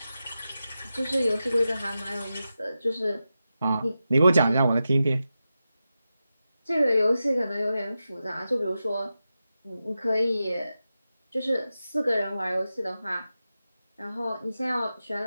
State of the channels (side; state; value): both; inverted; correlation -0.91